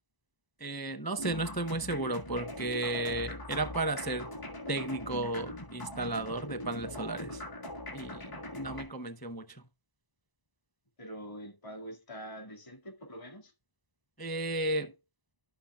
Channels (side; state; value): right; late; 1.0 ms